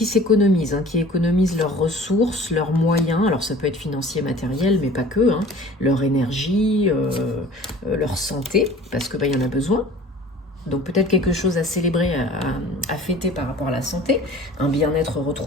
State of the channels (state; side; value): normal; both; correlation 0.45